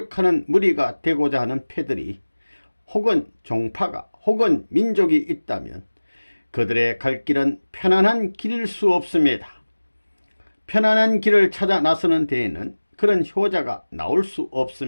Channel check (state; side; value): inverted; both; correlation -1.00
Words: 무리가 되고자 하는 패들이 혹은 종파가 혹은 민족이 있다면 그들의 갈 길은 편안한 길일 수 없습니다. 편안한 길을 찾아 나서는 데에는 그런 효자가 나올 수